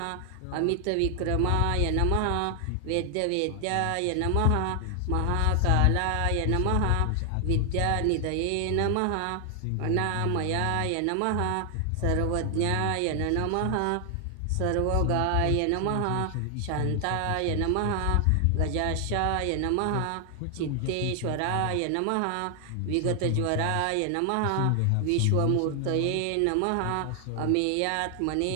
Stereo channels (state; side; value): different; both; correlation 0.00